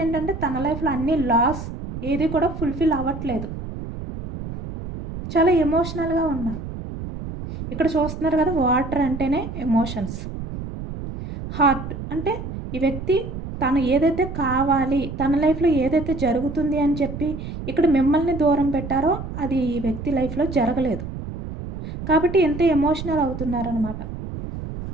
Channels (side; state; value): right; noise; rumble, 8 dB below the sound